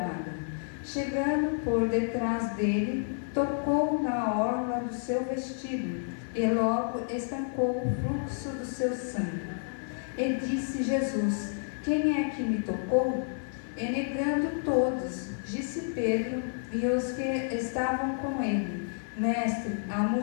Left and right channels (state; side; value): silent; right; 58 dB below the other